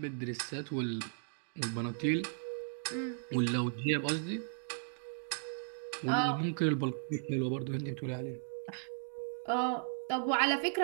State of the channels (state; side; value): silent; left; digital silence